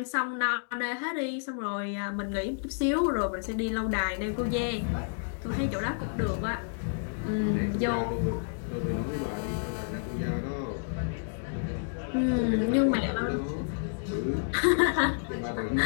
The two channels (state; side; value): silent; right; digital silence